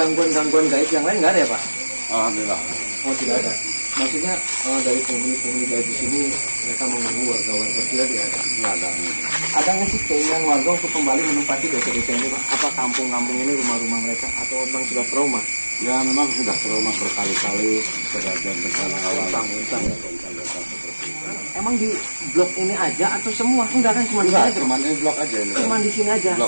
gaib yang lain nggak ada ya Pak? Alhamdulillah. Oh tidak ada. Maksudnya dari penghuni-penghuni gaib di sini mereka mengganggu warga-warga tidak ada. Nggak ada. Ada nggak sih keinginan warga untuk kembali menempati desa-desa ini Pak? Apa kampung-kampung ini rumah-rumah mereka atau memang sudah trauma? Ya memang sudah trauma berkali-kali kejadian bencana alam. Utang-utang. Emang di blok ini aja atau semua? Enggak kan cuma di sini Enggak, aja. cuma ini blok aja ini. Cuma di sini aja.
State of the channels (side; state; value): both; inverted; correlation -1.00